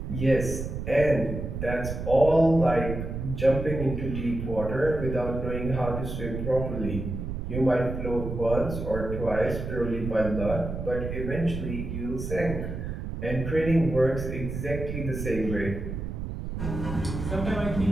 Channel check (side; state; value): right; noise; rumble, 5 dB below the sound